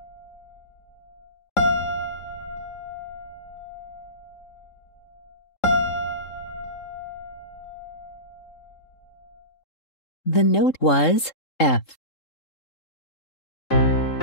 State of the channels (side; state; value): right; late; 3.7 ms